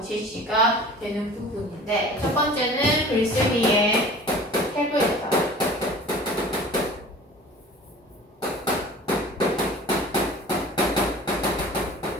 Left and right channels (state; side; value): normal; both; correlation 0.43